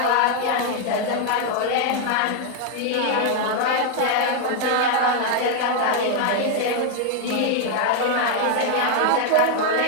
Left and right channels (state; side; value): different; both; correlation 0.00